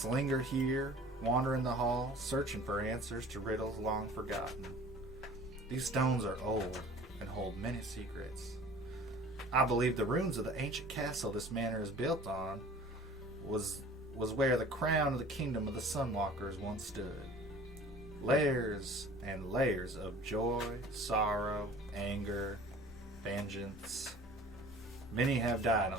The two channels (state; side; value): normal; both; correlation 0.46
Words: linger here, wander in the hall, searching for answers to riddles long forgotten. These stones are old and hold many secrets. I believe the ruins of the ancient castle this manor is built on was where the crown of the kingdom of the Sunwalkers once stood. Layers and layers of joy, sorrow, anger, vengeance. Many have died